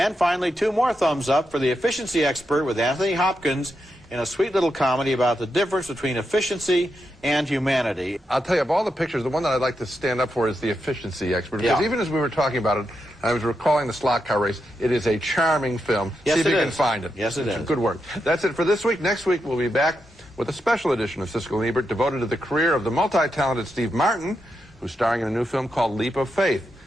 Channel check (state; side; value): normal; both; correlation 0.85